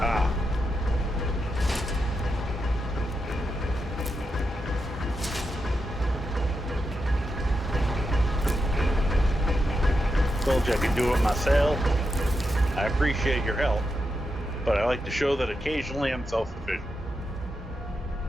Ah. Told you I could do it myself. I appreciate your help, but I like to show that occasionally I'm self-sufficient.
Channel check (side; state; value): both; normal; correlation 0.86